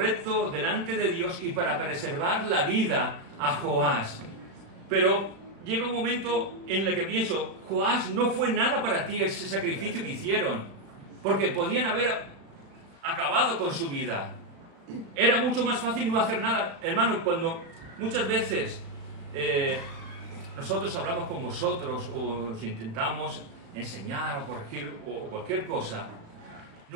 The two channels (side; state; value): left; late; 35 ms